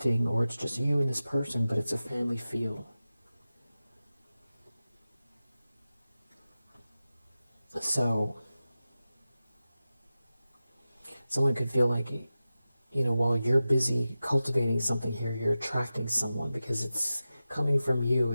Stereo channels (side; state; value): both; inverted; correlation -0.94